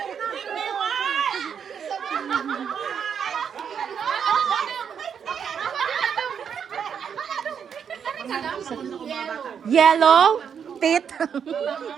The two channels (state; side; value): quieter; left; 7.5 dB